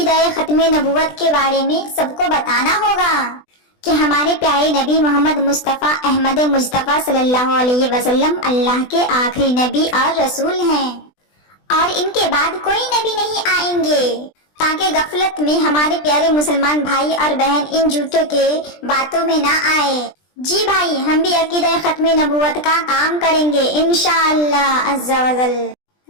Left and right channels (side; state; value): right; late; 20 ms